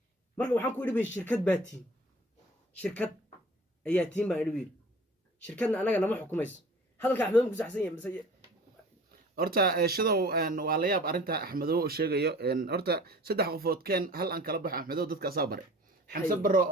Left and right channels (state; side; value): normal; both; correlation 0.44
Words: marka waxaan ku idhi shirkad baatiin shirkad ayaa tiin baa idhi shirkadna anaga nama xukumayso hadalka Axmed ku saxsan yahay horta shidow waa la yaab arinta Axmedow oo sheegayo horta saddex qofood keen hal aan kala baxo Axmedow dadka soo baray xamse baro